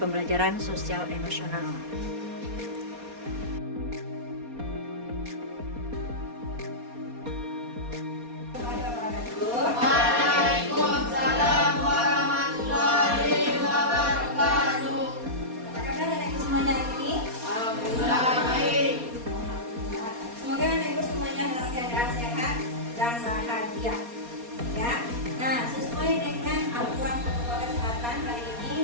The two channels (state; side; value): late; left; 4.2 ms